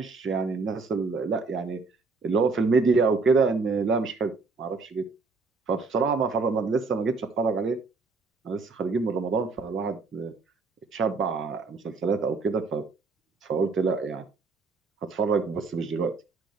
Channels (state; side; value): quieter; left; 4.2 dB